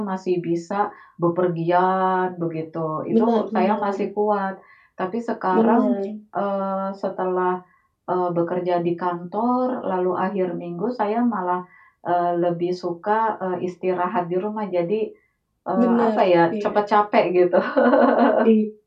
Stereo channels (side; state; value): both; identical; correlation 1.00